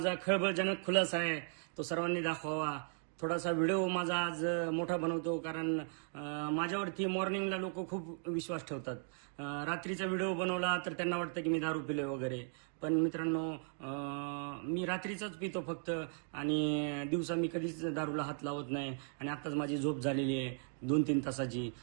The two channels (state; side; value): silent; left; 53 dB below the other